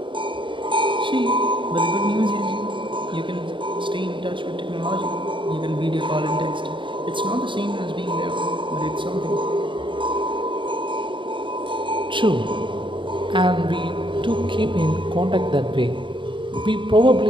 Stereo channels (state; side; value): late; left; 0.24 ms